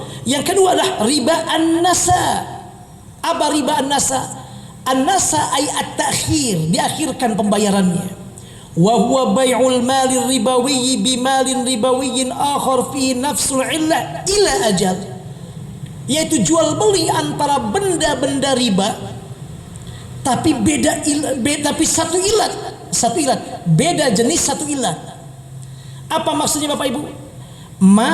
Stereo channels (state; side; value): identical; both; correlation 1.00